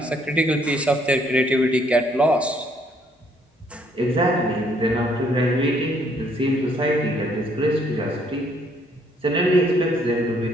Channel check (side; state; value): both; normal; correlation 0.67